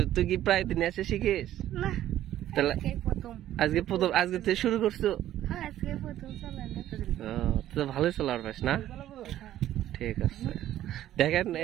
তুই কি প্রায় দিনে এসে শিখিস? তাহলে আজকে তুই শুরু করছো? তো ভালোই চলার পাস না? ঠিক আছে। দেখেন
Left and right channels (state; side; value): quieter; left; 12.7 dB